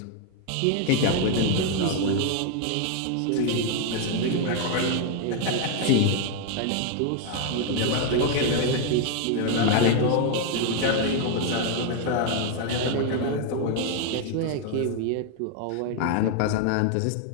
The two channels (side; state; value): both; different; correlation 0.01